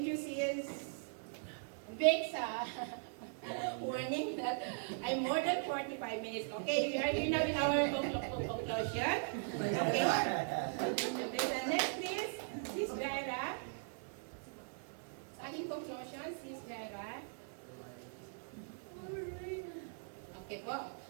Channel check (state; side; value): silent; left; digital silence